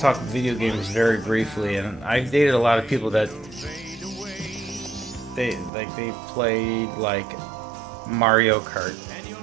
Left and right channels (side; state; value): left; drops out; at 5.7 s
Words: video games very briefly, and I've dated a lot of people that they played like Mario Kart